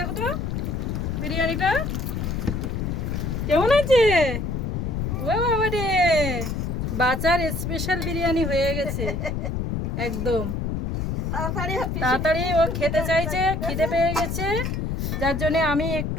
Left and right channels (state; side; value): noise; left; rumble, 2 dB below the sound